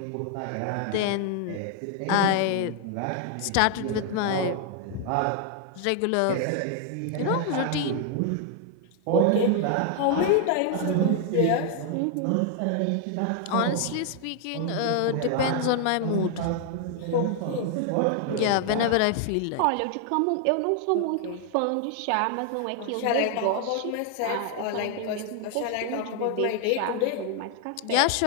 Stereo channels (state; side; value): different; both; correlation 0.00